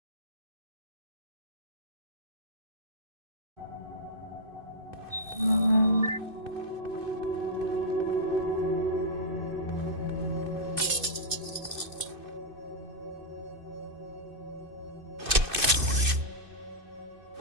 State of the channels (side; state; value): left; late; 2.6 ms